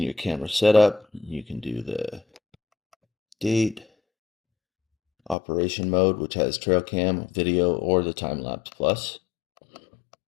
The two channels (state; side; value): drops out; right; at 5.4 s